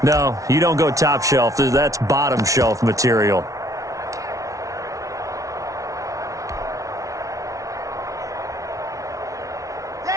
No, you don't go top shelf. That's bottom shelf material.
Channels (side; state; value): left; late; 0.16 ms